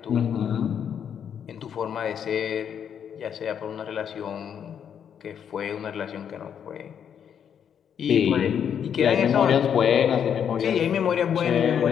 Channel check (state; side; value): quieter; right; 8.3 dB